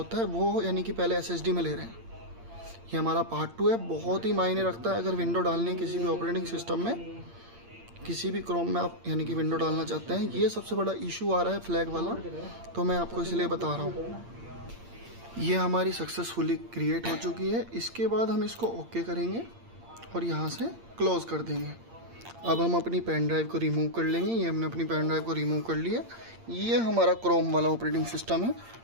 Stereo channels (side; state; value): left; late; 8.7 ms